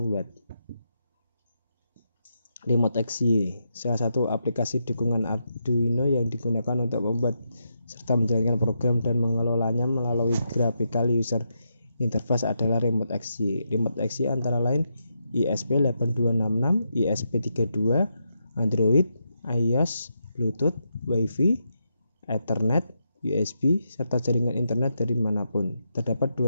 watt. Remote XY, salah satu aplikasi dukungan Arduino yang digunakan untuk membuat serta menjalankan program dan mengelolanya melalui graphical user interface adalah Remote XY. Remote XY antara lain ESP8266, ESP32, Android, iOS, Bluetooth, Wi-Fi, Ethernet, USB, serta jaringan internet dari manapun. Terdapat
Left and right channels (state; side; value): inverted; both; correlation -0.83